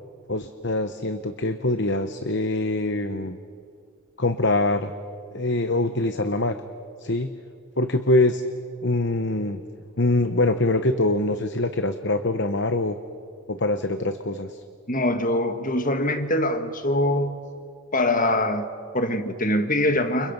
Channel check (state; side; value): normal; both; correlation 0.16